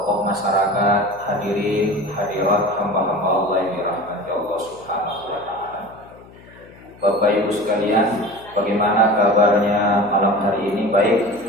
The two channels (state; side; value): noise; left; hum, 23 dB below the sound